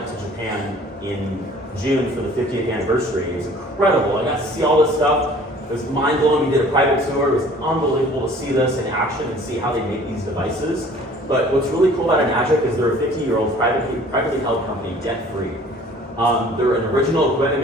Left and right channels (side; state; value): both; normal; correlation 0.51